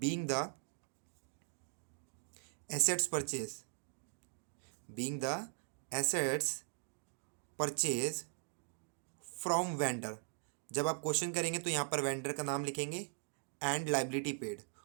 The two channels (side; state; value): left; silent; 51 dB below the other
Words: the assets purchase, being the assets purchase from vendor. जब आप क्वेश्चन करेंगे तो यहाँ पर वेंडर का नाम लिखेंगे एंड लाइबिलिटी पेड,